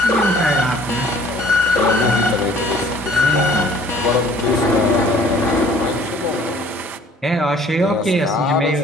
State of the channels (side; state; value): both; normal; correlation 0.54